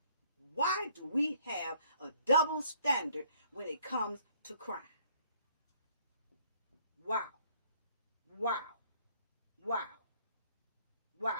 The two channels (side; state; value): both; inverted; correlation -0.62